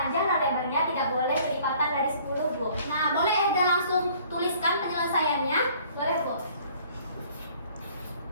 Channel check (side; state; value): both; inverted; correlation -0.56